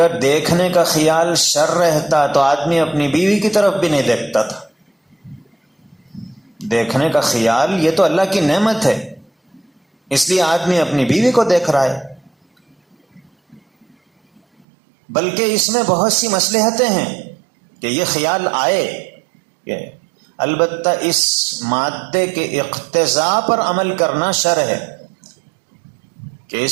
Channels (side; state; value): left; drops out; at 14.7 s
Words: دیکھنے کا خیال شر رہتا تو آدمی اپنی بیوی کی طرف بھی نہیں دیکھتا تھا۔ دیکھنے کا خیال یہ تو اللہ کی نعمت ہے، اس لیے آدمی اپنی بیوی کو دیکھ رہا ہے، بلکہ اس میں بہت سی مصلحتیں ہیں کہ یہ خیال آئے کہ البتہ اس مادے کے اقتضاء پر عمل کرنا شر ہے، کہ